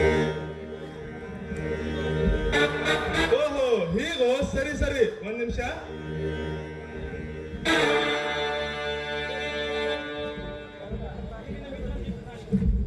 ಓಹೋ, ಹೀಗೋ? ಸರಿ ಸರಿ, ಒಂದ್ ನಿಮಿಷ.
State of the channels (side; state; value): both; identical; correlation 1.00